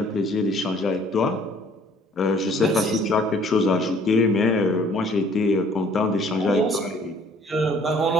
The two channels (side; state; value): both; normal; correlation 0.56